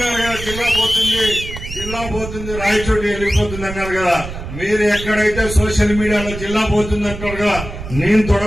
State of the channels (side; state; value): right; noise; rumble, 10 dB below the sound